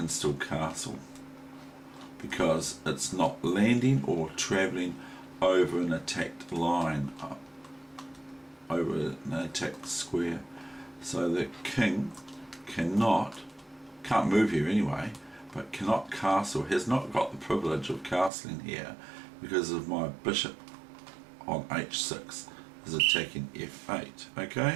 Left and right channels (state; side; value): drops out; left; at 18.3 s